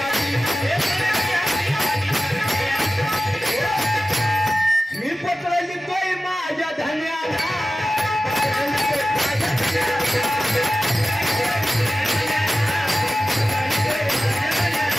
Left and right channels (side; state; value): both; normal; correlation 0.95